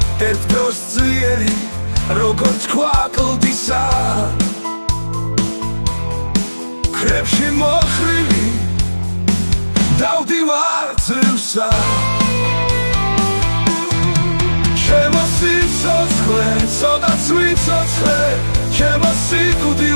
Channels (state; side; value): inverted; both; correlation -1.00